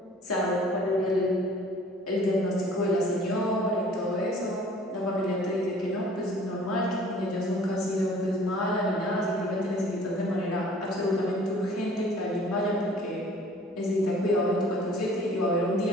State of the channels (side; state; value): both; normal; correlation 0.51